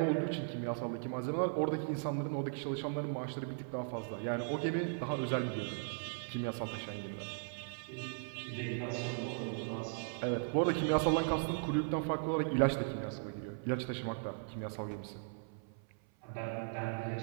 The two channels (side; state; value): left; silent; 53 dB below the other